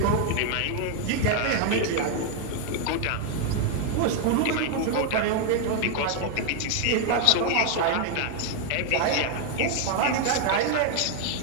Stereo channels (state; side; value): different; both; correlation 0.00